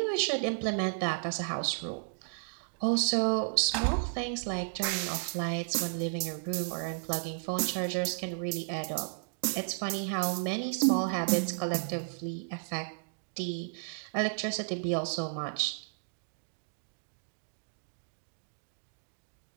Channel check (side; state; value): left; silent; digital silence